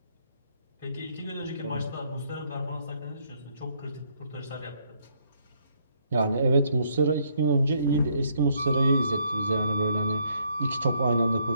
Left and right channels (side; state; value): both; inverted; correlation -0.70